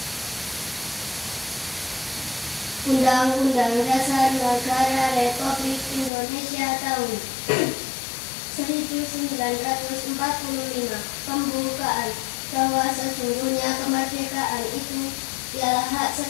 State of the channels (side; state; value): right; drops out; at 6.1 s